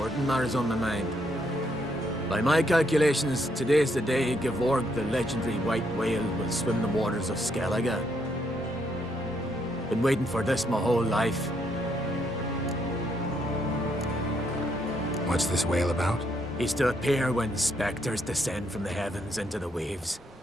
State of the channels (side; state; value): both; normal; correlation 0.74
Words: matters on my mind. By my calculations, today's the day Gevorg, the legendary white whale, will swim the waters of Skellige. Been waiting for this my whole life. What's this whale about? He's to appear when spectres descend from the heavens into the waves.